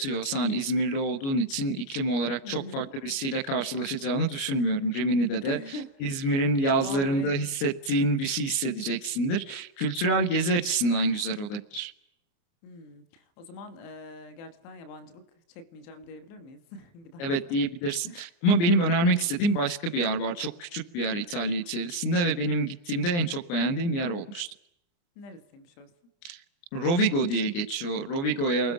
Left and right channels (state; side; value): late; right; 30 ms